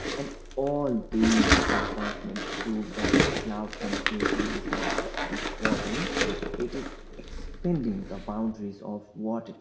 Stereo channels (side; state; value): both; identical; correlation 1.00